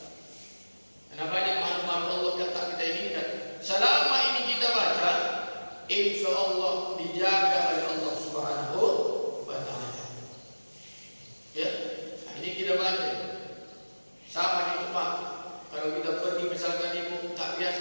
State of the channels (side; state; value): both; inverted; correlation -1.00